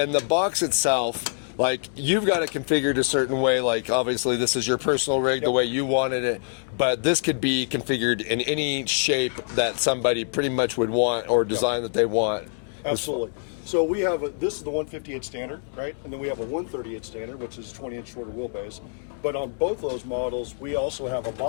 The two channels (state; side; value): silent; right; digital silence